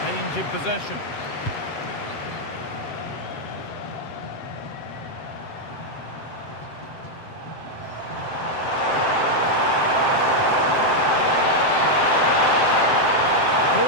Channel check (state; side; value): late; right; 7.7 ms